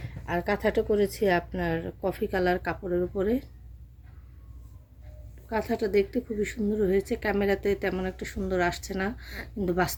আর কাঁথাটা করেছি আপনার কফি কালার কাপড়ের উপরে। কাঁথাটা দেখতে খুবই সুন্দর হয়েছে। ক্যামেরাতে তেমন একটা সুন্দর আসছে না, কিন্তু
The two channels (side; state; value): both; identical; correlation 1.00